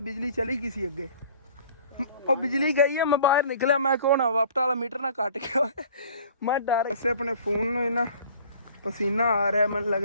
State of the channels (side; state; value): both; inverted; correlation -0.50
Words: ਬਿਜਲੀ ਚਲੀ ਗਈ ਸੀ ਅੱਗੇ, ਉਹ ਬਿਜਲੀ ਗਈ ਹੈ। ਮੈਂ ਬਾਹਰ ਨਿਕਲਿਆ, ਮੈਂ ਕਹੋ ਨਾ ਵਾਪਟਾ ਵਾਲਾ ਮੀਟਰ ਨਾ ਕੱਟ ਗਿਆ, ਮੈਂ ਡਰ ਵੈਸੇ ਆਪਣੇ ਫੋਨ ਨੂੰ ਇੰਨਾ ਪਸੀਨਾ ਆ ਰਿਹਾ, ਮੈਨੂੰ